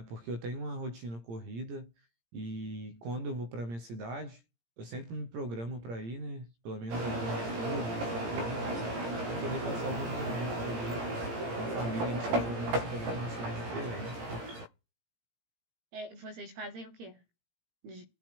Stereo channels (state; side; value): late; left; 17 ms